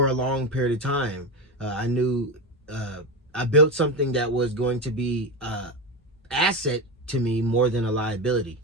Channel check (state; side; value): normal; both; correlation 0.17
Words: a long period of time. I knew I built something that was going to be an asset to me more than a liability.